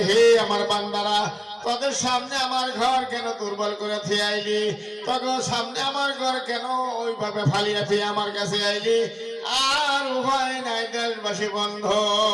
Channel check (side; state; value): both; identical; correlation 1.00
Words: হে আমার বান্দারা তোদের সামনে আমার ঘর কেন দুর্বল করে থিয়ে আইলি তোদের সামনে আমার ঘর কেন ওইভাবে ফালিয়ে থিয়ে আমার কাছে আইলি আর উভয় নাই দেশবাসী বন্ধ